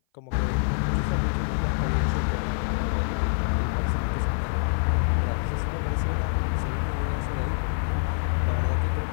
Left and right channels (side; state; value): right; silent; 57 dB below the other